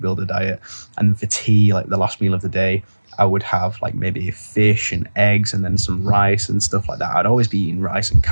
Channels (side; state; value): both; inverted; correlation -1.00